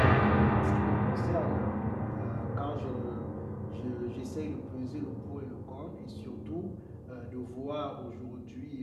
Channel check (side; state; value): both; identical; correlation 1.00